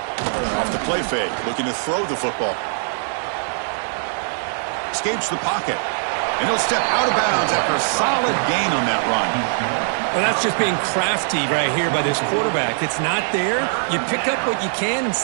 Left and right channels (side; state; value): left; silent; digital silence